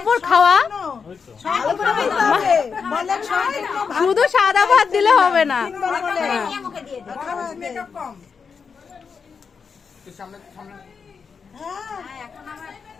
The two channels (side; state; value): right; quieter; 5.8 dB